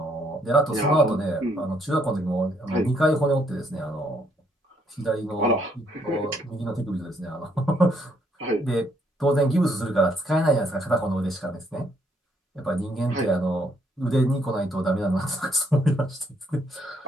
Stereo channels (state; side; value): normal; both; correlation 0.70